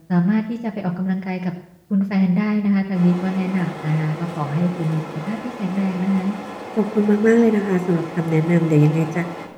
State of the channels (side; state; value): both; identical; correlation 1.00